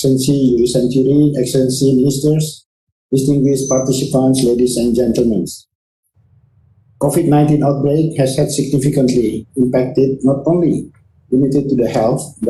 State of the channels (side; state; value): both; identical; correlation 1.00